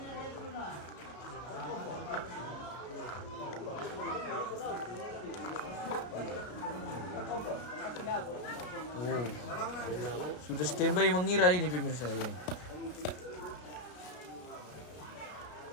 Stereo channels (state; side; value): late; right; 33 ms